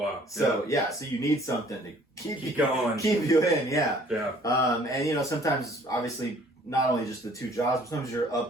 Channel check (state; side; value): normal; both; correlation 0.56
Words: So so you need something to keep you going, keep you in. Yeah. Yeah. And sometimes obviously not only just the 2 jobs, but sometimes you're